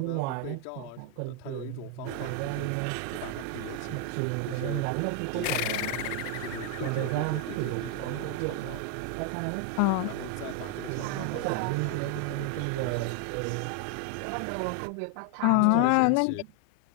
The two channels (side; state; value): both; different; correlation 0.00